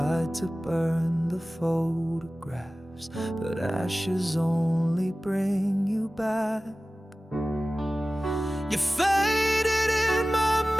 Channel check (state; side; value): normal; both; correlation 0.97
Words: to burn the photographs, but ashes only bring you back. You faded in my